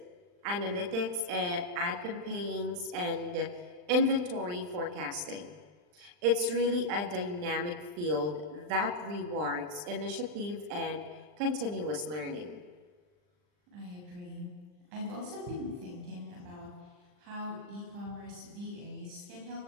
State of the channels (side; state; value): left; late; 39 ms